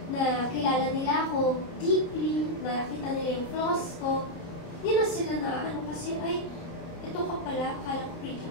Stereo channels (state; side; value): late; right; 30 ms